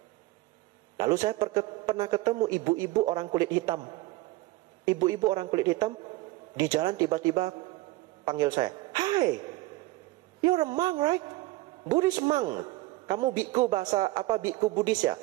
Lalu saya pernah ketemu ibu-ibu orang kulit hitam. Ibu-ibu orang kulit hitam di jalan tiba-tiba panggil saya. Hi, you're a monk, right? Buddhist monk. Kamu biku bahasa apa, biku Buddhis ya?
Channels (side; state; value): left; quieter; 19.1 dB